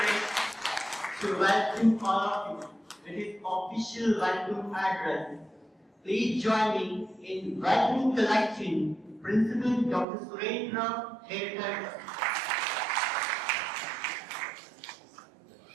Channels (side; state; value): left; drops out; at 10.1 s